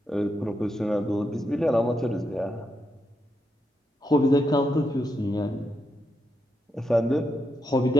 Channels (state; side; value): normal; both; correlation 0.83